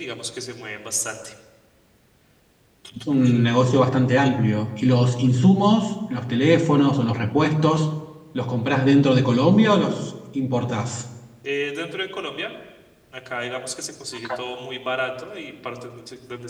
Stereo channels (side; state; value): both; identical; correlation 1.00